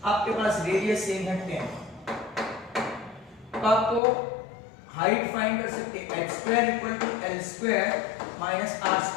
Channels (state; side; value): drops out; right; at 4.0 s